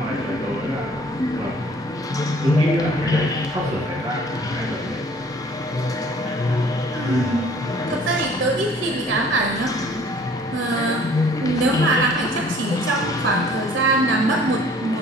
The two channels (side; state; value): both; normal; correlation 0.55